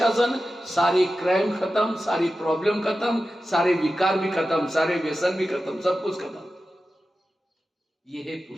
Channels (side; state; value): both; normal; correlation 0.93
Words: सारे क्राइम खत्म, सारी प्रॉब्लम खत्म, सारे विकार भी खत्म, सारे व्यसन भी खत्म, सब कुछ खत्म। ये है